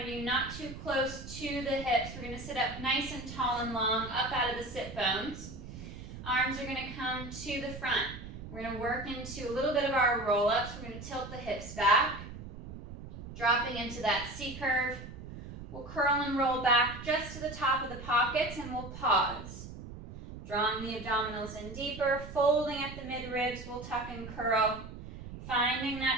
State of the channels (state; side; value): noise; right; rumble, 12 dB below the sound